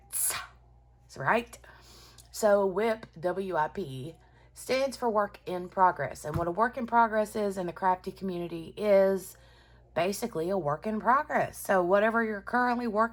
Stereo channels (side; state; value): both; identical; correlation 1.00